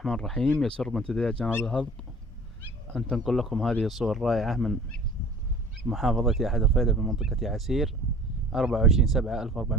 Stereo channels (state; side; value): normal; both; correlation 0.46